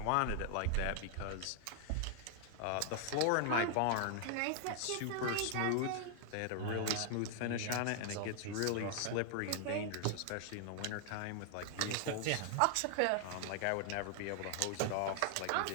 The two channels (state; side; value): different; both; correlation 0.00